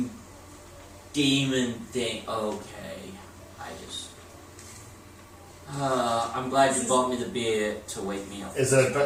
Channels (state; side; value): identical; both; correlation 1.00